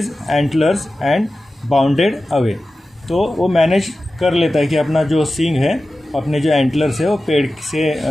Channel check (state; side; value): normal; both; correlation 0.95